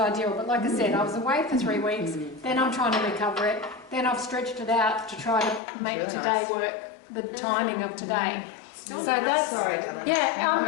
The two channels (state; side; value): drops out; right; at 5.6 s